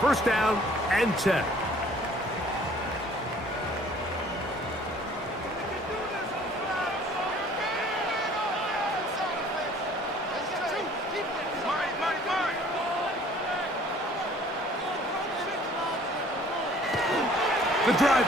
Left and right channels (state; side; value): normal; both; correlation 0.54